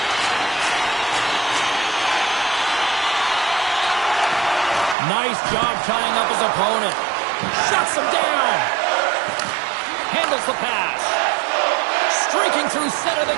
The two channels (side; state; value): left; drops out; at 5.0 s